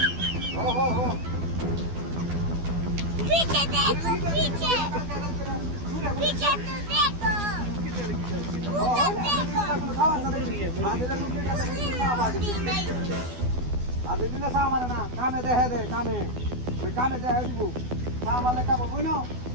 पीछे देखो पीछे पीछे तो देखो আদিন না সামার না কামে দেহে দে কামে ওই কামে দেহে দিব সামালে কাম বই না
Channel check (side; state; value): left; late; 12 ms